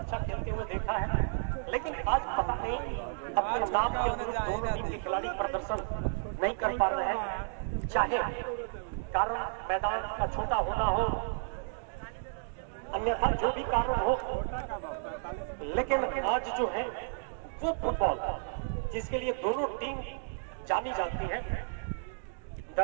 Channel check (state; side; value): silent; left; digital silence